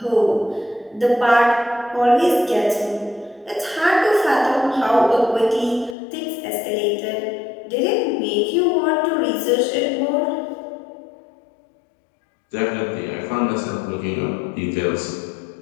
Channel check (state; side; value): drops out; right; at 6.0 s